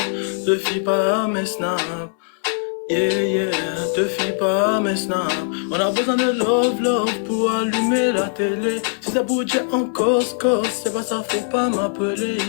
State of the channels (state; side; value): silent; right; digital silence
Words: Te fie pas à mes snaps, yeah, yeah, te fie pas à mes snaps. On a besoin de love, love pour allumer la télé. Si ça bouge en cause, c'est pas ça, faut pas m'appeler,